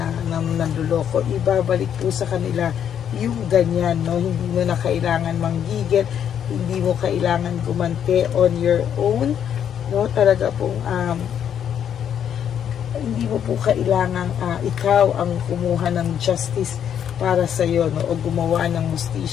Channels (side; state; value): right; quieter; 9.0 dB